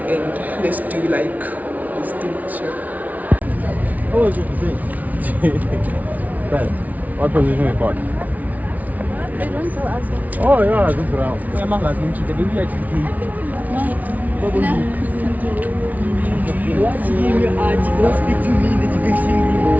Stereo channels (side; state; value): left; late; 0.074 ms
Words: and let's do like this thing. Sure. How was your debate? Ben, what position you got? They don't tell us. Oh yeah, this round.